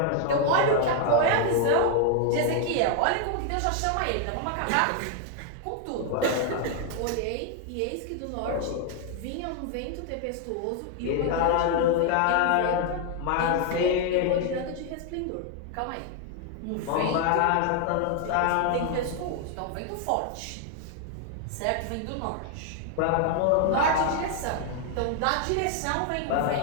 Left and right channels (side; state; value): both; different; correlation 0.00